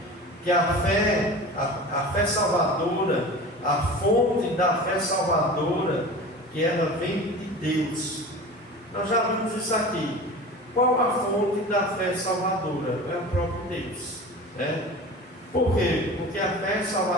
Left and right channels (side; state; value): both; normal; correlation 0.35